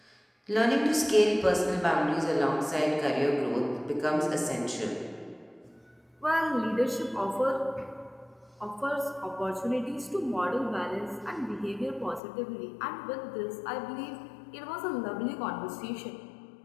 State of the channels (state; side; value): drops out; right; at 12.2 s